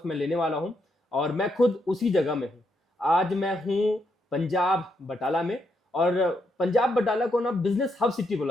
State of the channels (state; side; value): normal; both; correlation 0.79